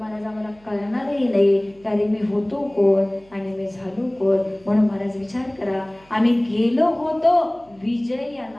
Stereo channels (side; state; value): right; noise; hum, 29 dB below the sound